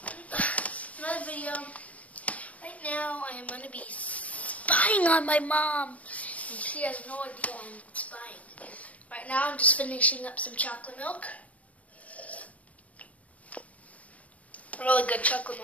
video. Right now I am going to be spying on my mom. And she has no idea I'm spying. Right now I'm just finishing up some chocolate milk. Really good chocolate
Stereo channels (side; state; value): right; late; 0.069 ms